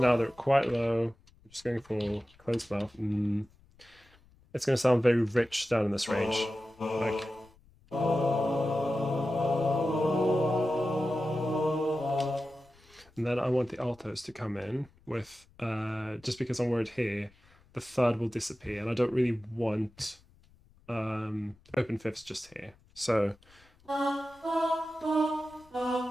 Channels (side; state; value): left; noise; rumble, 29 dB below the sound